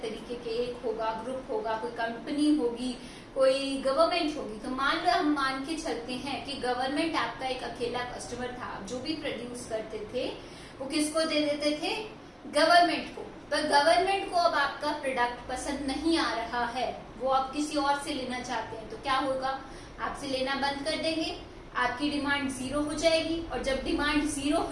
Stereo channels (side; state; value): both; identical; correlation 1.00